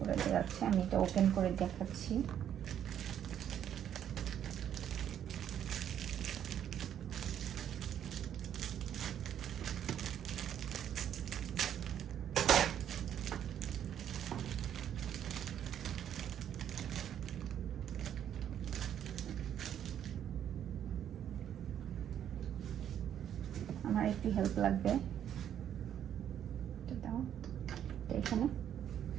দেওয়া আছে। আমি এটা ওপেন করে দেখাচ্ছি। আমার একটু হেল্প লাগবে,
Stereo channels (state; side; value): quieter; left; 9.8 dB